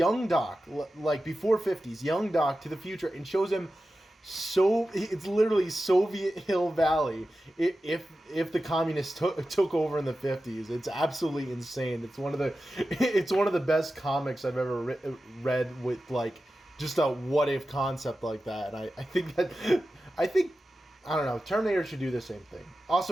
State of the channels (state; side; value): normal; both; correlation 0.93